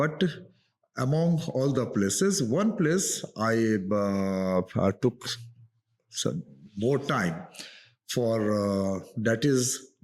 among all the places, one place I took some more time for, that is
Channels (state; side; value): identical; both; correlation 1.00